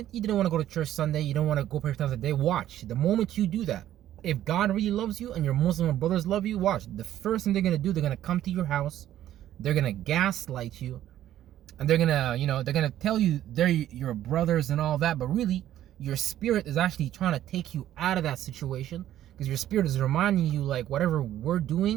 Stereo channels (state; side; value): quieter; left; 12.4 dB